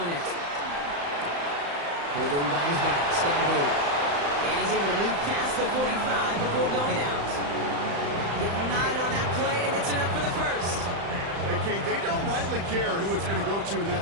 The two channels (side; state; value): left; late; 35 ms